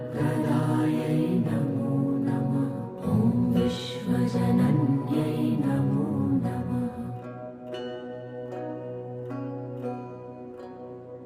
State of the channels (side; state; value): both; identical; correlation 1.00